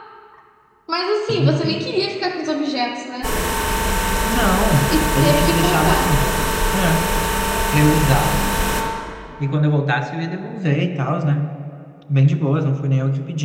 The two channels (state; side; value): identical; both; correlation 1.00